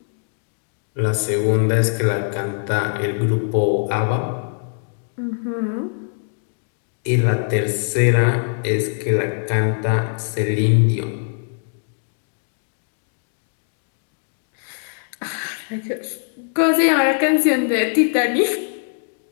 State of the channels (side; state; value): right; silent; digital silence